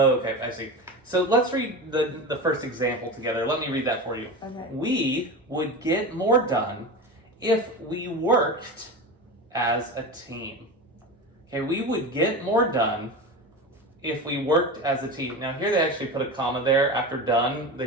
I see. So let's read the first example together. Let me read that for you. Okay. We would get more done if we worked as a team. Okay, we would get more done if we worked as a team. Now here they actually put a comma there after done. They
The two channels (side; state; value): both; normal; correlation 0.26